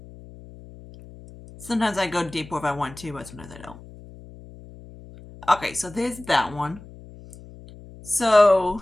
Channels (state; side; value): noise; left; hum, 19 dB below the sound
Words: Sometimes I go deeper if I want to, but sometimes I don't. Okay, so there's that one. So